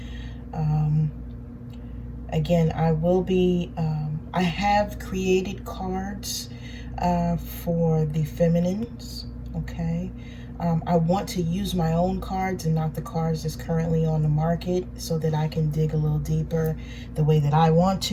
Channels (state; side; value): identical; both; correlation 1.00